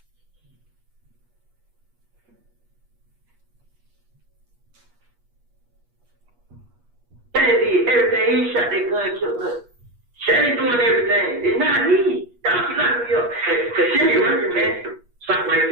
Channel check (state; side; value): late; left; 8.4 ms